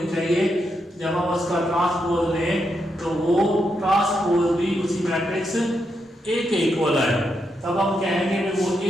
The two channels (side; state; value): both; normal; correlation 0.82